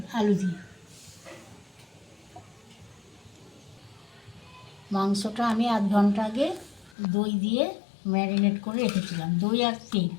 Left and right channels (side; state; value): right; drops out; at 7.0 s